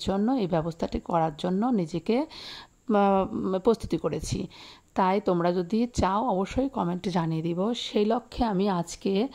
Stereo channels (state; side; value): identical; both; correlation 1.00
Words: জন্য এই ব্যবস্থাটি করার জন্য নিজেকে প্রস্তুতি করেছি। তাই তোমরা যদি চাও অবশ্যই কমেন্টে জানিয়ে দিব। সেই লক্ষ্যে আমি আজকে